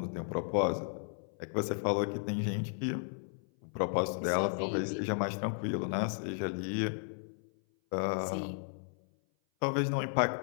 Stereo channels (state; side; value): silent; right; 55 dB below the other